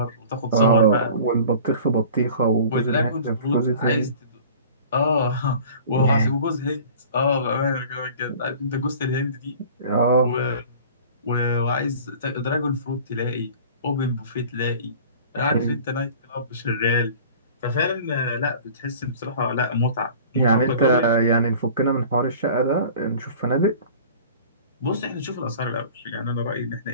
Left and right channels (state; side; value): inverted; both; correlation -0.44